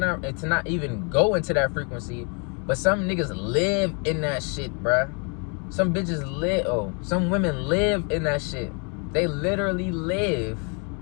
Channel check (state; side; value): quieter; right; 36.8 dB